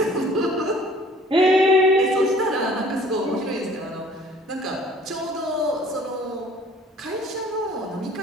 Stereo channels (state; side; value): normal; both; correlation 0.53